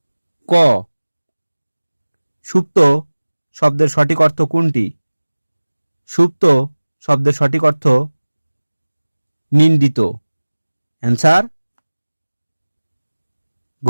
ক। সুপ্ত শব্দের সঠিক অর্থ কোনটি? সুপ্ত শব্দের সঠিক অর্থ নিন্দিত। অ্যান্সার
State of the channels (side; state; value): both; inverted; correlation -1.00